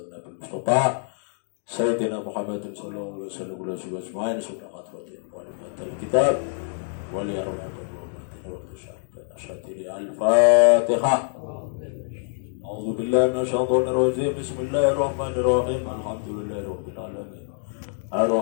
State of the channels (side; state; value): right; silent; digital silence